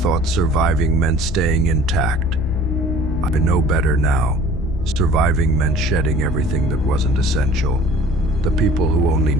surviving meant staying intact. I know better now. Surviving meant shedding everything that wasn't essential. The people who only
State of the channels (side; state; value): left; noise; hum, 9 dB below the sound